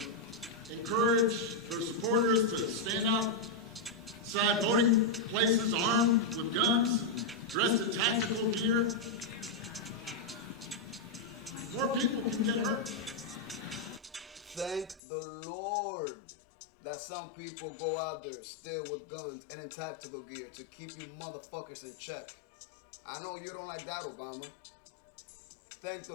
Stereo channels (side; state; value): right; drops out; at 15.0 s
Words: encourage their supporters to stand outside voting places armed with guns, dressed in tactical gear, more people can get hurt. Thank the Lord that some people go out there still with guns and in tactical gear to keep you motherfuckers in check. I know you don't like that, Obama. Thank